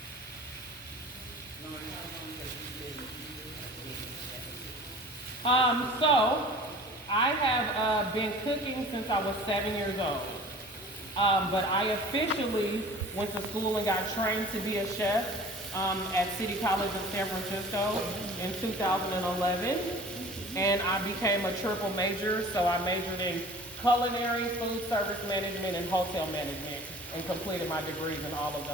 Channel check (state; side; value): normal; both; correlation 0.44